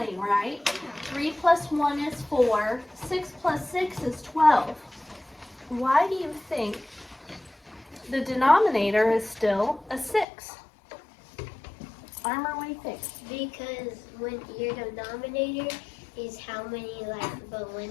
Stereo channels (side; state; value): right; drops out; at 10.2 s